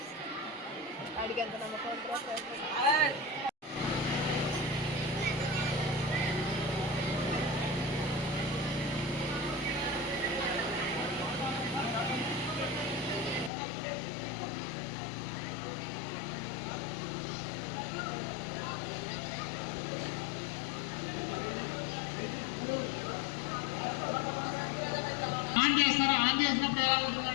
అడిగేంత నమ్మకం ఆన్ చేస్తారా? ఆన్ చేసినప్పుడు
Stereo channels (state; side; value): drops out; right; at 13.5 s